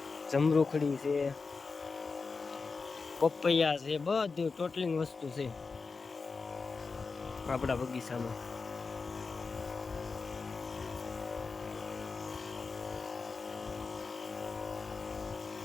જમરૂખડી છે, પપૈયા છે, બધું ટોટલિંગ વસ્તુ છે આપણા બગીચામાં.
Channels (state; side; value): quieter; right; 4.5 dB